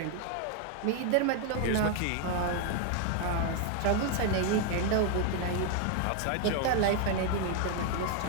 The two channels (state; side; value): different; both; correlation 0.01